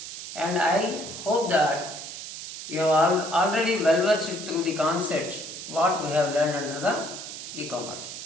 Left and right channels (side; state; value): right; noise; hiss, 10 dB below the sound